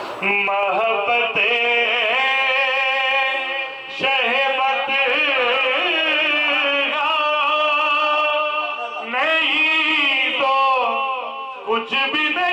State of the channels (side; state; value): both; identical; correlation 1.00